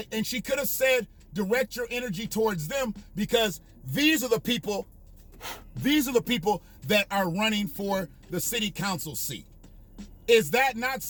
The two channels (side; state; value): both; identical; correlation 1.00